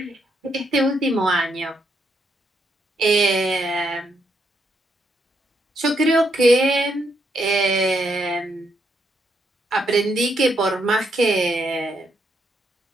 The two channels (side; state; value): both; normal; correlation 0.77